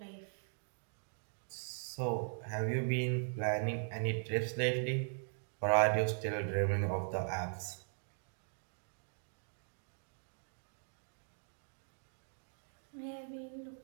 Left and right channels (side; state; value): left; silent; digital silence